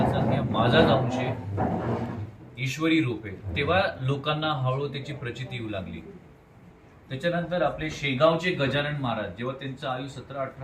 सांग की माझाच अंश आहे, ईश्वरी रूप आहे. तेव्हा लोकांना हळूहळू त्याची प्रचिती येऊ लागली. त्याच्यानंतर आपले शेगावचे गजानन महाराज, जेव्हा त्यांचं आयु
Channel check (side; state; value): both; identical; correlation 1.00